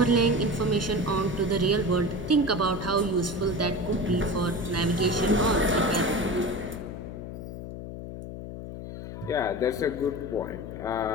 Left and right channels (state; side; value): noise; left; hum, 9 dB below the sound